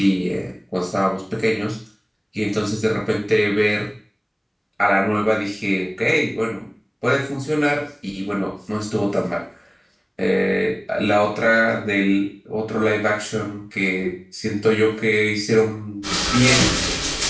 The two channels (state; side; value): identical; both; correlation 1.00